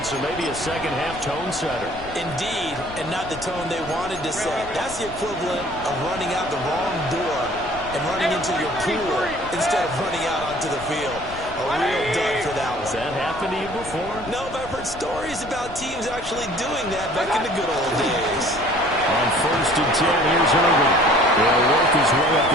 maybe a second-half tone setter. Indeed, and not the tone they wanted to set. That's the equivalent of running out the wrong door and running into your pool instead of running out onto the field. A real dud for that one. Has that happened to you before? No, but I've heard stories about teams actually doing that back in the good old days. On 1st and 10, here's Irvin. He'll work his way up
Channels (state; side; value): noise; left; rumble, 15 dB below the sound